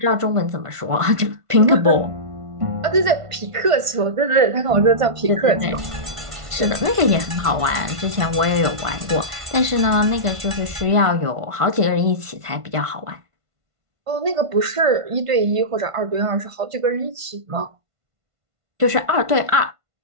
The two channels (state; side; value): late; left; 1.5 ms